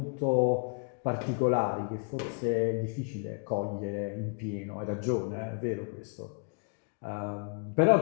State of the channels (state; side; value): quieter; right; 38.5 dB